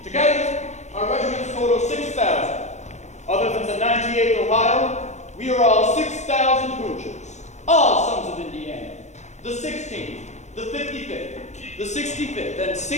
Together, our regiments total 6,000. Other than the 98th Ohio, we are all 6,000 Hoosiers, all sons of Indiana. The 16th, the 55th, the 65th, and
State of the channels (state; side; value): late; right; 0.33 ms